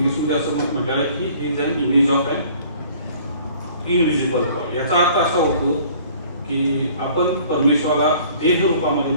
असं म्हटलेलं आहे की he is an image of an invisible God. याचा अर्थ असा होतो की आपण परमेश्वराला देह रूपामध्ये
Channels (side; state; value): both; inverted; correlation -0.53